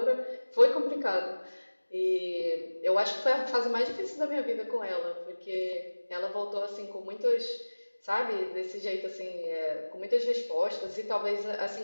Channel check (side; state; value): both; inverted; correlation -1.00